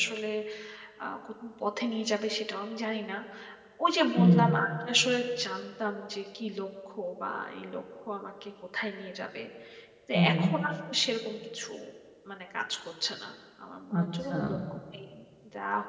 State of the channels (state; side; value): identical; both; correlation 1.00